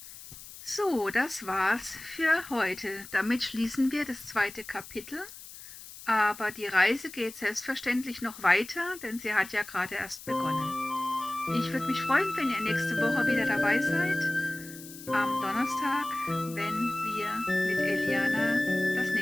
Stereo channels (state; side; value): noise; left; hiss, 15 dB below the sound